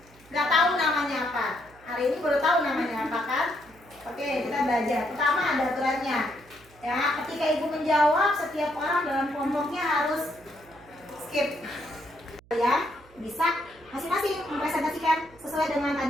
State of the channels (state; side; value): noise; right; hum, 26 dB below the sound